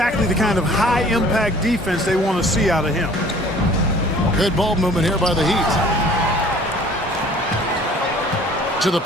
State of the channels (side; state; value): both; normal; correlation 0.51